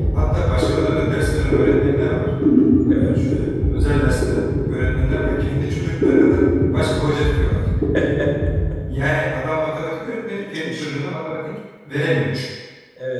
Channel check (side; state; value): both; identical; correlation 1.00